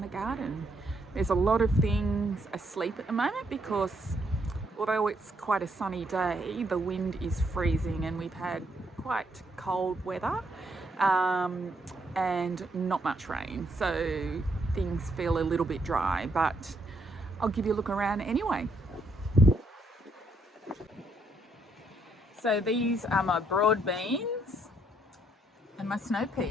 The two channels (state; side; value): normal; both; correlation 0.73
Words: the garden. There's a lot of things asleep at the moment because although it's quite a sunny day, the wind is freezing and we've had quite cold weather and not much rain, so things feel a little bit dry, but I'll give you a look around anyway. So these are my broad beans and my snow